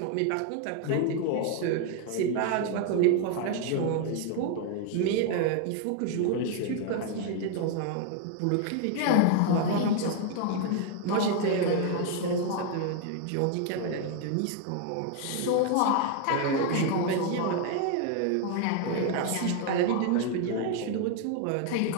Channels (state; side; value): different; both; correlation 0.00